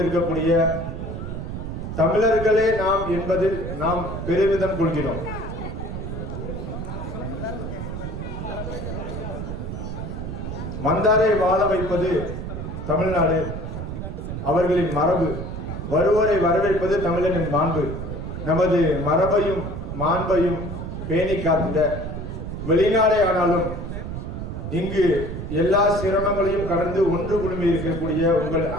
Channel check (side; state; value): right; noise; rumble, 6 dB below the sound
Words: தமிழர்களே நாம் என்பதில் நாம் பெருமிதம் கொள்கிறோம். வந்தாரை வாழ வைப்பது தமிழ்நாடு, அவர்களின் மரபு. வருவோரை வரவேற்பது தமிழனின் மாண்பு. நமது மரபையும் மாண்பையும் பேணி காத்திட வெளிநாடே ஆனாலும் இங்கு எல்லா சிரமங்களையும் கடந்து ஒன்று குழுமி இருக்கக்கூடிய உங்கள்